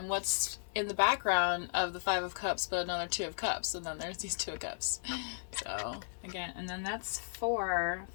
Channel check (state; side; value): silent; right; 54 dB below the other